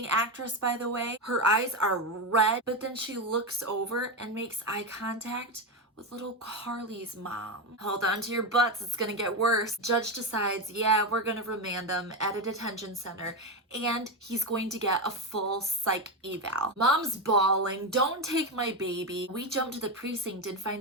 actress, by the way, her eyes are red, but then she looks over and makes eye contact with little Carly's mom. Hold on to your butts, it's gonna get worse. Judge decides, yeah, we're gonna remand them at a detention center and he's going to get a full psych eval. Mom's bawling, don't take my baby. We jump to the precinct and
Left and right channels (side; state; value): both; normal; correlation 0.13